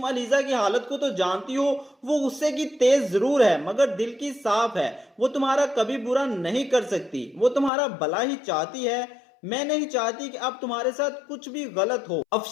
अलीजा की हालत को तो जानती हो, वो गुस्से की तेज जरूर है मगर दिल की साफ है, वो तुम्हारा कभी बुरा नहीं कर सकती, वो तुम्हारा भला ही चाहती है। मैं नहीं चाहती कि अब तुम्हारे साथ कुछ भी गलत हो।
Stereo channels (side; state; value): right; drops out; at 7.7 s